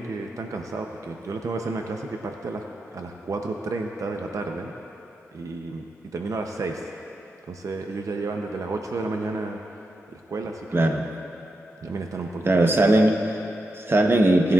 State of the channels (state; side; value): normal; both; correlation 0.86